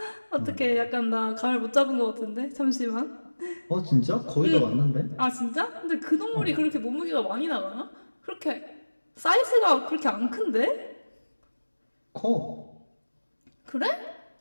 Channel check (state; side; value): inverted; both; correlation -1.00